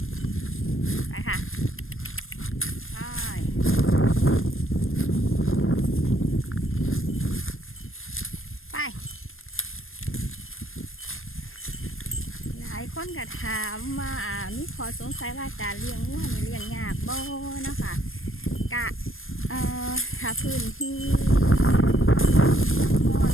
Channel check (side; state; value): right; late; 0.60 ms